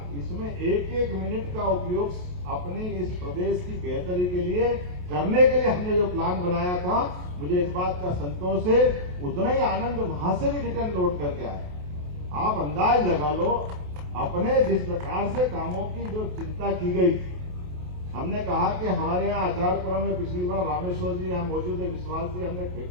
इसमें 1-1 मिनट का उपयोग अपने इस प्रदेश की बेहतरी के लिए करने के लिए हमने जो प्लान बनाया था, मुझे इस बात का संतोष है, उतना ही आनंद वहां से भी रिटर्न लौट करके आया। आप अंदाज लगा लो, अपने जिस प्रकार से कामों की जो चिंता की गई थी, हमने कहा कि हमारे यहाँ आचारपुरा में पिछली बार रामेश्वर जी यहाँ मौजूद है, विश्वास जी, हमने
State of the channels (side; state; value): left; late; 28 ms